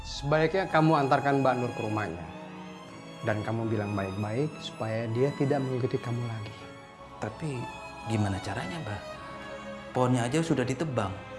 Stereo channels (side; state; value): both; identical; correlation 1.00